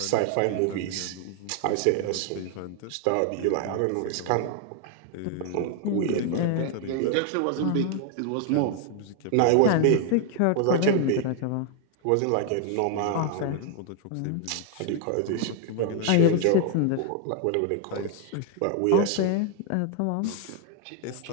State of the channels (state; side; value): different; both; correlation 0.00